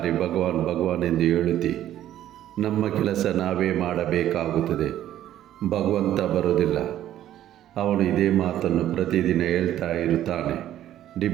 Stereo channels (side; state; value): left; quieter; 12.2 dB